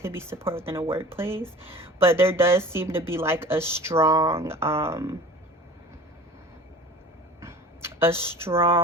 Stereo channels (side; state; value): both; normal; correlation 0.40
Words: be support within a workplace. But there does seem to be like a strong